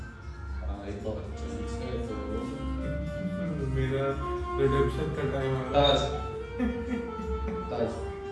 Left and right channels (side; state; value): both; identical; correlation 1.00